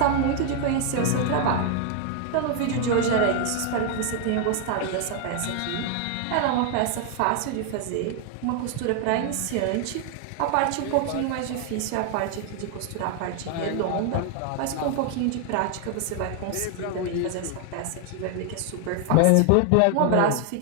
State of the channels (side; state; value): both; different; correlation 0.00